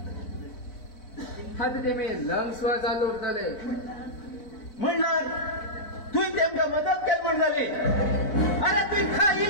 आता तेमी लंग्सवर चालू उरतले म्हणल्यार तुवें तेमकां मदत केली म्हण जाली अरे तुवें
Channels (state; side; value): late; right; 4.1 ms